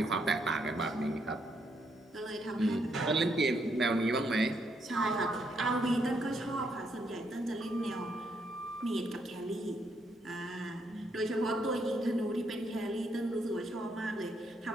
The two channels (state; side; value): normal; both; correlation 0.75